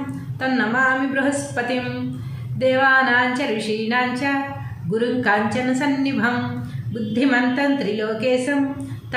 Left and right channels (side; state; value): both; identical; correlation 1.00